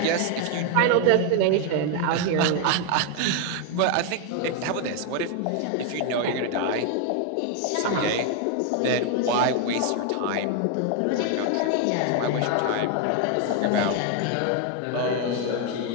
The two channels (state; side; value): different; both; correlation 0.01